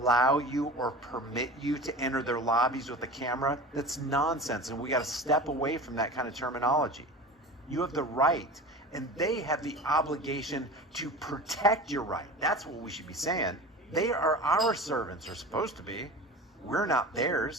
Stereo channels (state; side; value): normal; both; correlation 0.34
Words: you or permit you to enter their lobbies with a camera, that's nonsense, and we got to step away from that kind of terminology. You have the right, and they have the obligation to protect your right. That's what we should be saying. They are our servants, or supposed to be. We're not